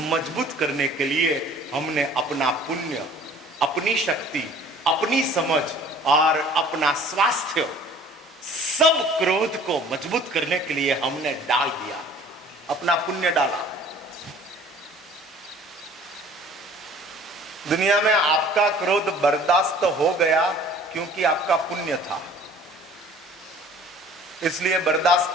करने के लिए हमने अपना पुण्य, अपनी शक्ति, अपनी समझ और अपना स्वास्थ्य, सब क्रोध को मजबूत करने के लिए हमने डाल दिया, अपना पुण्य डाला। दुनिया में आपका क्रोध बर्दाश्त हो गया क्योंकि आपका पुण्य था, इसलिए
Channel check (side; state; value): both; normal; correlation 0.50